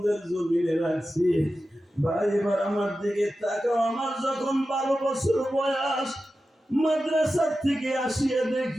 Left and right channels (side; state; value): both; normal; correlation 0.93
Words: জমিনে রাখছি। ভাই এবার আমার দিকে তাকাও। আমার যখন 12 বছর বয়স মাদ্রাসার থেকে আসিয়া